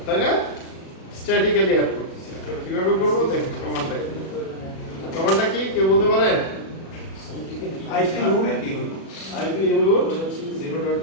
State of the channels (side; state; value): right; late; 37 ms